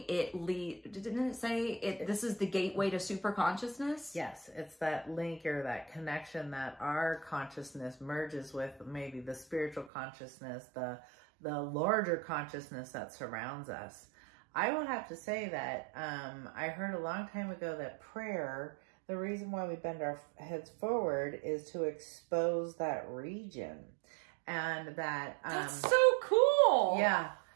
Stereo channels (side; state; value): left; drops out; at 9.9 s